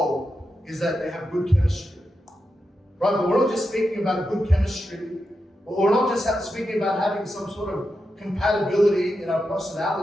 is that they have good chemistry. Right? But we're not just speaking about good chemistry. We're not just speaking about having some sort of compatibility in our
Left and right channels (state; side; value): normal; both; correlation 0.88